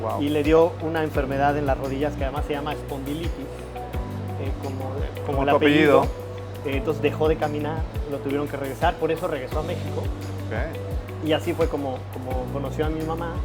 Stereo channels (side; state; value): both; identical; correlation 1.00